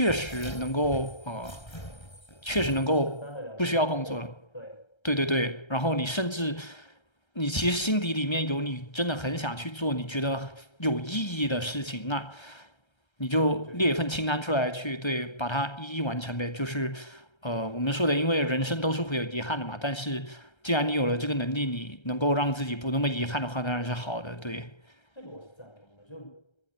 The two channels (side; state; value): right; late; 1.3 ms